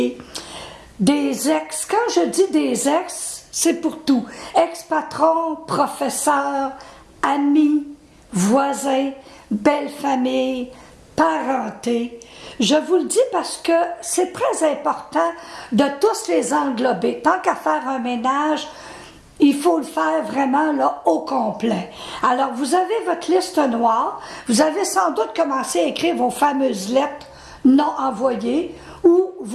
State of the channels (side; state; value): both; identical; correlation 1.00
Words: des ex. Quand je dis des ex, c'est pour tout. Ex-patron, professeur, amis, voisins, belle famille, parenté. Je vous le dis parce que c'est très important de tous les englober. Tant qu'à faire un ménage, il faut le faire vraiment là, au complet. Alors, vous avez votre liste noire. Vous avez sans doute commencé à écrire vos fameuses lettres non envoyées ou